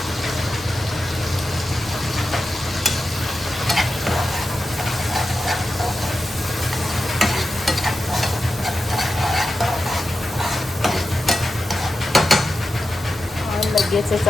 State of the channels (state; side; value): normal; both; correlation 0.90